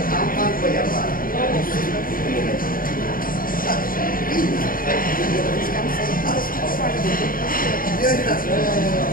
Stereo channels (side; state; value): right; late; 0.41 ms